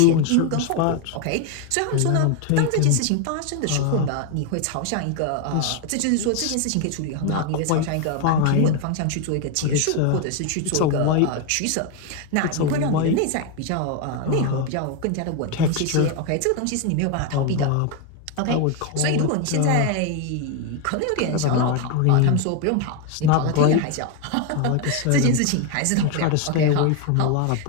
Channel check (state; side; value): different; both; correlation 0.01